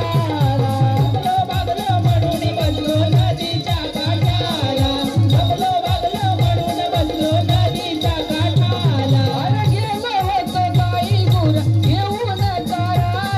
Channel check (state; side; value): identical; both; correlation 1.00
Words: जमलो भागलो म्हणून बसलो नदीच्या काठाला, जमलो भागलो म्हणून बसलो नदीच्या काठाला. अरे गेलो होतो गाई गुर घेऊन